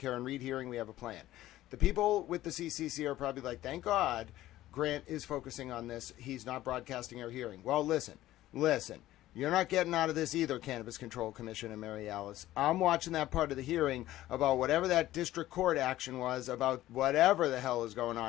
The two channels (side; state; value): right; quieter; 15.0 dB